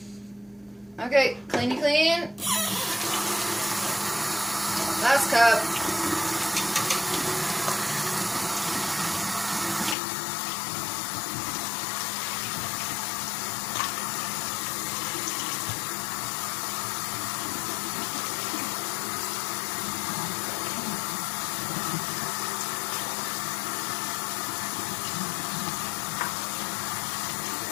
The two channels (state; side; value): drops out; right; at 10.0 s